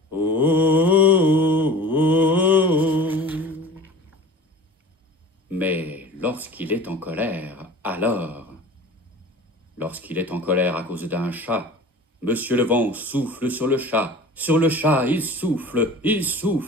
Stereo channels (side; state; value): both; normal; correlation 0.39